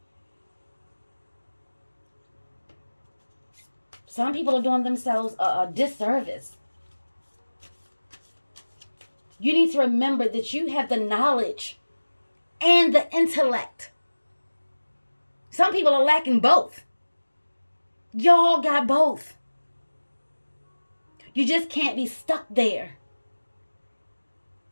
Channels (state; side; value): inverted; both; correlation -1.00